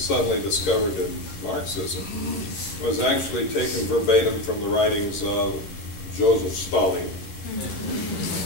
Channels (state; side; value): late; right; 11 ms